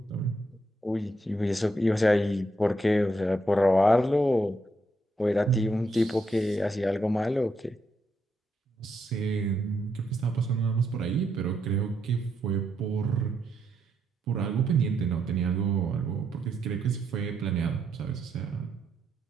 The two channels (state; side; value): normal; both; correlation 0.79